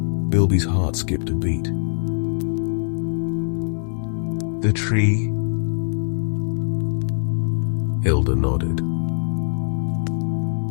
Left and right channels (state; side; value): silent; right; digital silence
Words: Bilby's heart skipped a beat. "The tree?" Hilda nodded.